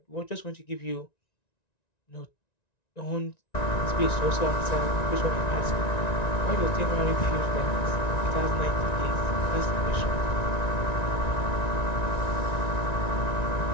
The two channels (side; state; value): right; late; 1.9 ms